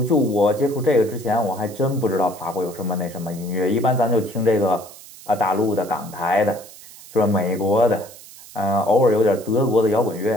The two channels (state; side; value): noise; right; hiss, 19 dB below the sound